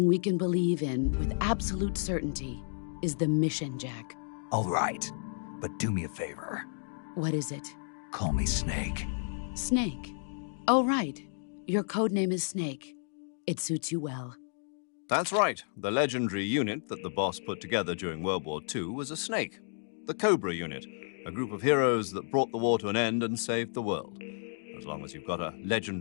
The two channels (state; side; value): silent; right; digital silence